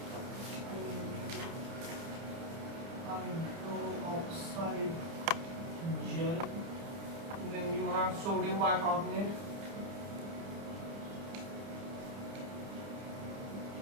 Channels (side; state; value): left; late; 30 ms